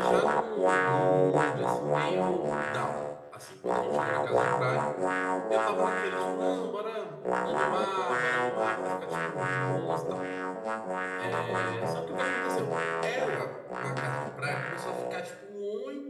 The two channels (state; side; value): identical; both; correlation 1.00